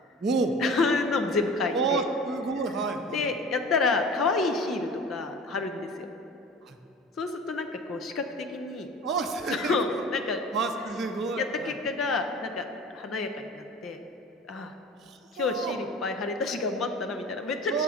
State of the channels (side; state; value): both; normal; correlation 0.40